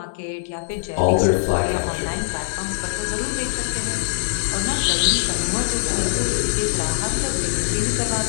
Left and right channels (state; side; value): silent; right; digital silence